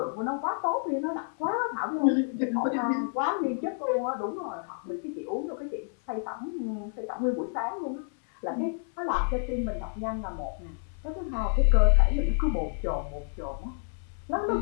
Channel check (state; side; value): silent; right; 58 dB below the other